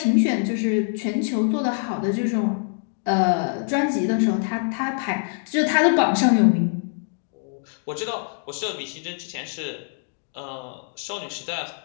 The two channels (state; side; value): silent; right; 57 dB below the other